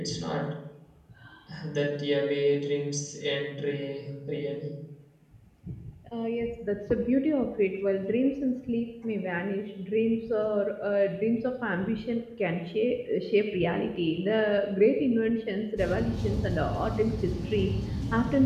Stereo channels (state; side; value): identical; both; correlation 1.00